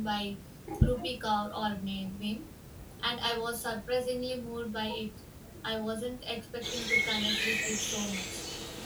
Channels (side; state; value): both; identical; correlation 1.00